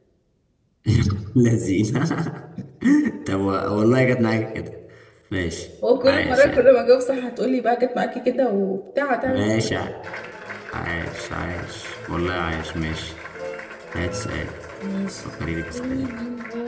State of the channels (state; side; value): identical; both; correlation 1.00